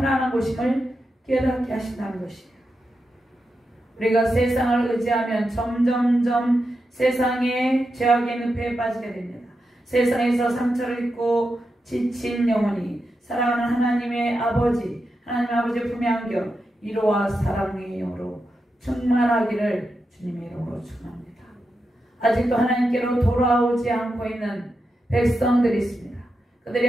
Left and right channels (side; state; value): both; normal; correlation 0.87